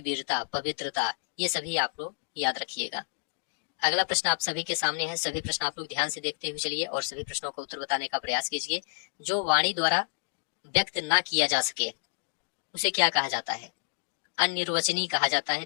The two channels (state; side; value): silent; right; digital silence